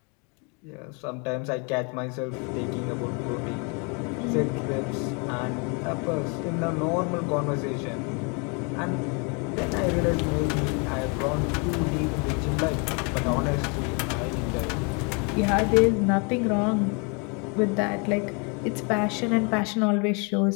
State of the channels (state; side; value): quieter; right; 34.0 dB